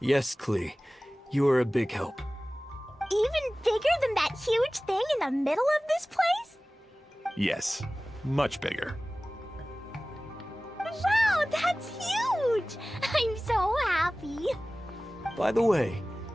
Klee. You are a big help. Even bigger than that huge thing in the middle of this place? Yes, much bigger. Wow, that's huge! I'm so happy. By the way,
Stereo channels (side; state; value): both; normal; correlation 0.98